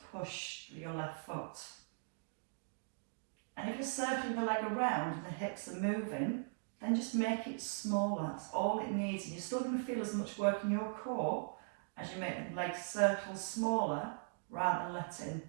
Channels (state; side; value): silent; left; digital silence